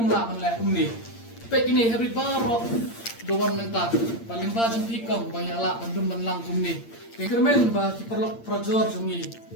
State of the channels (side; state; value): right; late; 8.7 ms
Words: la man le ni. Pek ini hybrid barok doan mentak paling bajeng pi kong banyak la bandum ban lang kum ni. Kermen ba kiperlok projor jungi